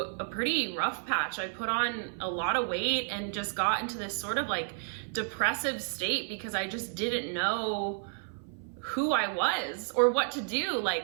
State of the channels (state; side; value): silent; left; 56 dB below the other